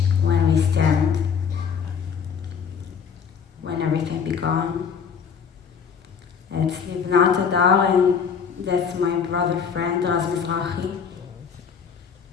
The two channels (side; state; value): right; quieter; 6.6 dB